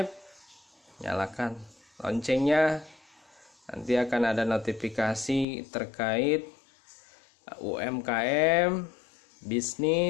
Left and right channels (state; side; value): drops out; right; at 5.5 s